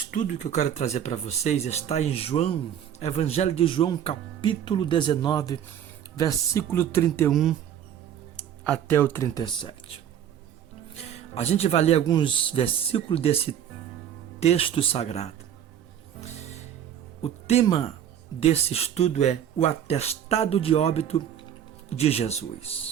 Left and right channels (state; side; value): quieter; left; 9.7 dB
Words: que eu quero trazer para vocês está em João, Evangelho de João, capítulo 19, versículo 31 até o 37. A gente vai ler alguns versículos desse texto sagrado. O tema desse estudo é o atestado de óbito de